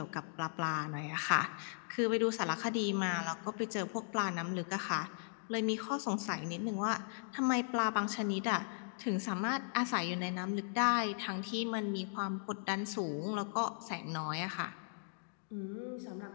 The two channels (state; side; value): silent; right; digital silence